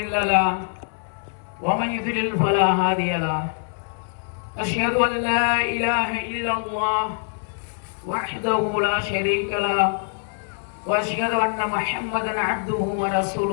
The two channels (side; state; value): right; silent; 63 dB below the other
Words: له ومن يضلل فلا هادي له أشهد أن لا إله إلا الله وحده لا شريك له وأشهد أن محمدا عبده